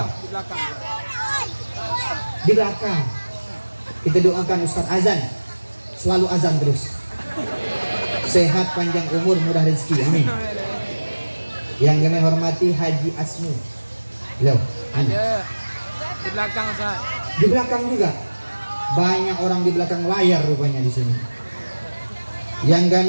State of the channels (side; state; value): both; inverted; correlation -1.00